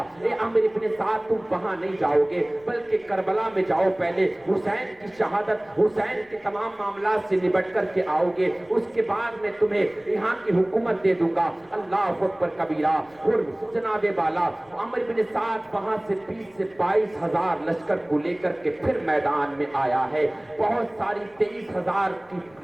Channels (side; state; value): left; noise; rumble, 30 dB below the sound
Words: ए अमर इब्ने साद, तुम वहां नहीं जाओगे बल्कि करबला में जाओ, पहले हुसैन की शहादत, हुसैन के तमाम मामला से निपट करके आओगे, उसके बाद मैं तुम्हें यहाँ की हुकूमत दे दूंगा। अल्लाह अकबर कबीरा। हुर जनाबे वाला, अमर इब्ने साद वहां से 20-22 लश्कर को लेकर के फिर मैदान में आया है। बहुत सारी 23,000 की